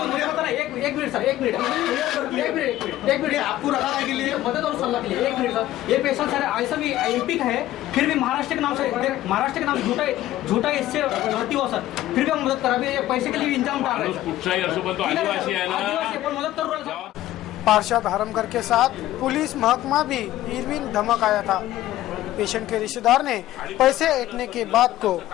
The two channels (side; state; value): right; quieter; 14.5 dB